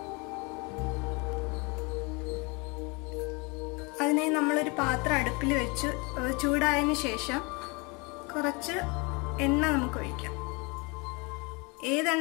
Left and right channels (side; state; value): right; quieter; 29.4 dB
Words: അതിനായി നമ്മളൊരു പാത്രം അടുപ്പിൽ വെച്ച് ചൂടായതിനു ശേഷം കുറച്ച് എണ്ണ നമുക്ക് ഒഴിക്കാം.